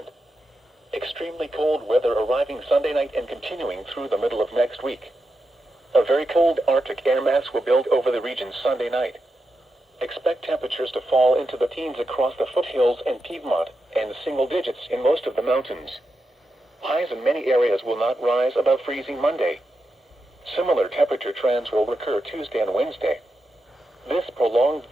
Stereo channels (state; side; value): normal; both; correlation 0.87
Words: Extremely cold weather arriving Sunday night and continuing through the middle of next week. A very cold Arctic air mass will build over the region Sunday night. Expect temperatures to fall into the teens across the foothills and Piedmont, and single digits in most of the mountains. Highs in many areas will not rise above freezing Monday. Similar temperature trends will recur Tuesday and Wednesday. This prolonged